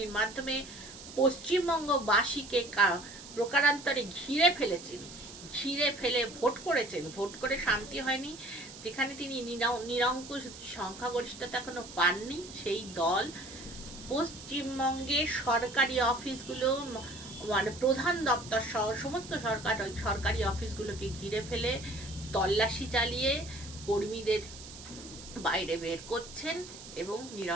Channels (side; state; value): right; noise; hiss, 15 dB below the sound